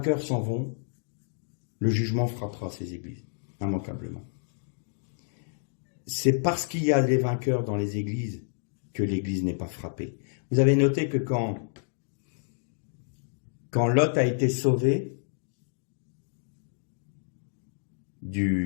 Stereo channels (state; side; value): silent; right; digital silence